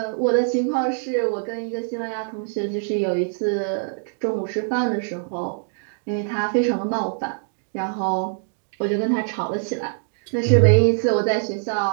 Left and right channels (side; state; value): left; silent; digital silence